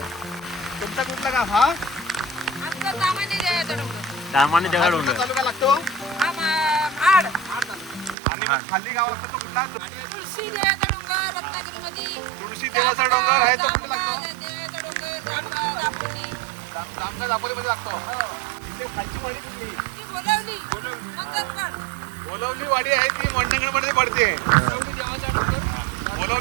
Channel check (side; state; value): left; drops out; at 8.2 s